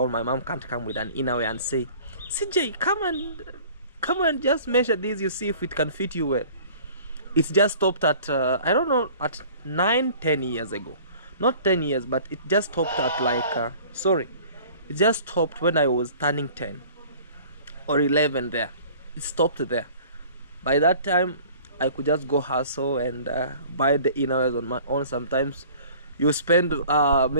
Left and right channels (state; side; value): inverted; both; correlation -0.48